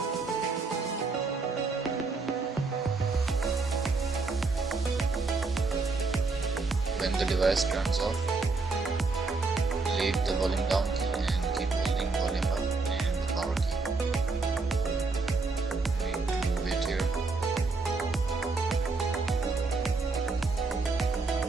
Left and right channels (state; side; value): quieter; left; 3.9 dB